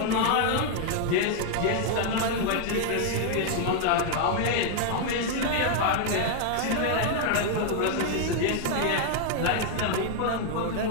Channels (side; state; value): both; different; correlation 0.00